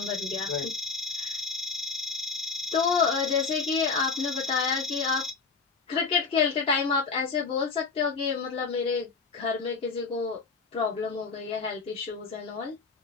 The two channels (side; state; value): right; quieter; 4.8 dB